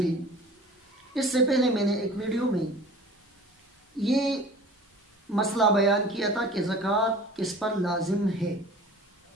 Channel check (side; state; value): both; normal; correlation 0.43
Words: اس سے پہلے میں نے ایک ویڈیو میں یہ مسئلہ بیان کیا تھا کہ زکوٰۃ کس پر لازم ہے۔